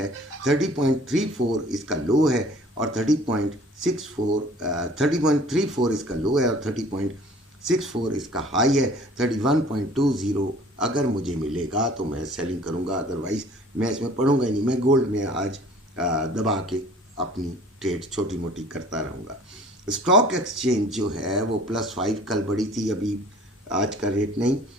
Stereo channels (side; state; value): both; normal; correlation 0.50